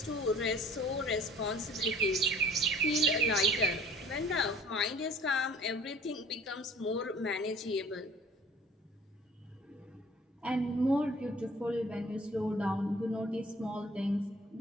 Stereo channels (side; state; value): both; normal; correlation 0.50